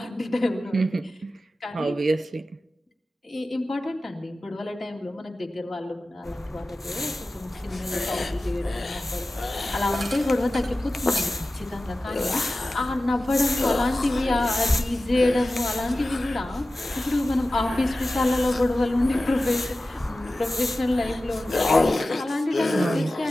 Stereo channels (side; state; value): both; normal; correlation 0.95